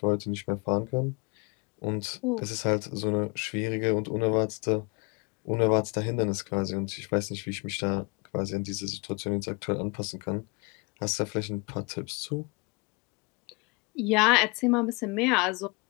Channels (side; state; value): right; quieter; 29.9 dB